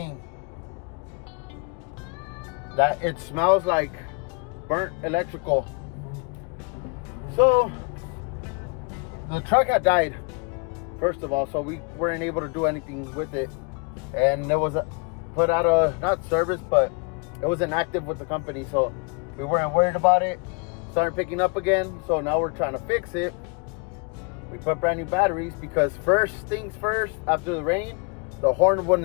that it smells like burnt electrical. So the truck had died, first of all, so we weren't able to do anything with it, and it was put out of, not service, but it was inactive with the company, so we weren't worried about it. Started picking up again, so now we're trying to fix it. We put brand new batteries because first things first, after the rain, the horn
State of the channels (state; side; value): quieter; right; 33.8 dB